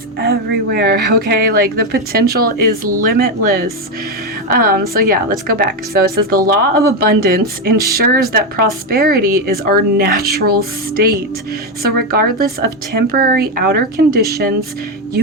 everywhere. Okay. Like, the potential is limitless. So yeah, let's go back. So it says the law of abundance ensures that prosperity is our natural state. So regardless of temporary outer conditions,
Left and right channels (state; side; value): normal; both; correlation 0.08